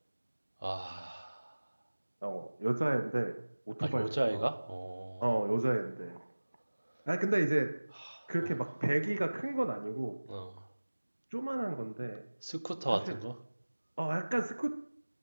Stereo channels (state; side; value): inverted; both; correlation -1.00